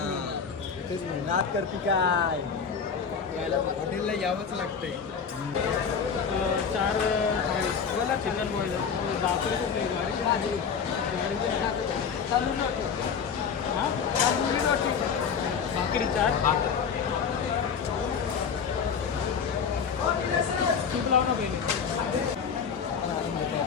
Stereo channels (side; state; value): right; quieter; 6.5 dB